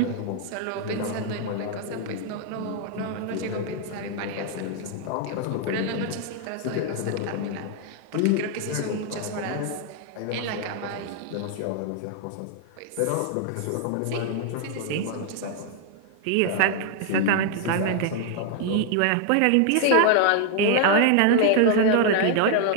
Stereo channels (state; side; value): different; both; correlation 0.00